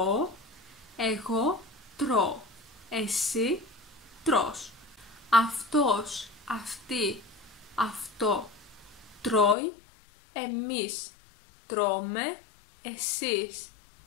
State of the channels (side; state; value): right; drops out; at 9.6 s